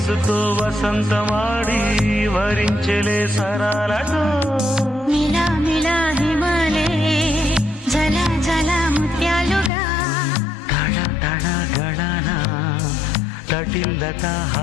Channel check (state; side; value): drops out; right; at 9.7 s